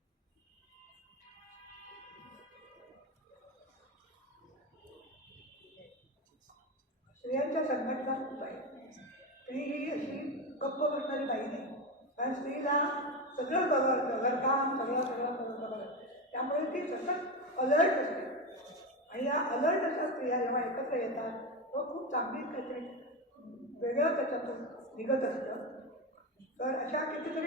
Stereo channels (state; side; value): normal; both; correlation 0.17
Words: स्त्रियांच्या संघटना खूप आहे. स्त्री ही अशी गप्प बसणारी बाई नाही, कारण स्त्रीला सगळं घरकाम सगळं त्यामुळे ती सतत अलर्ट असते. आणि या अलर्ट अशा स्त्रिया जेव्हा एकत्र येतात तो खूप चांगली काहीतरी वेगळं त्याच्यातून निघत असतं. तर अशा